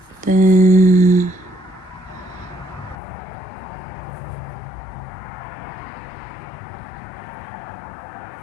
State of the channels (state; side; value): drops out; right; at 3.0 s